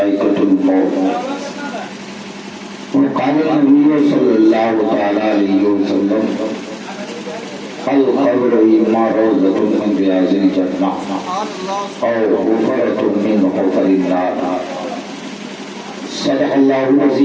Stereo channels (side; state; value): both; identical; correlation 1.00